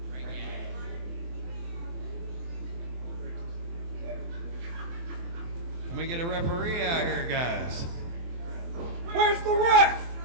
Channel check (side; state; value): left; late; 24 ms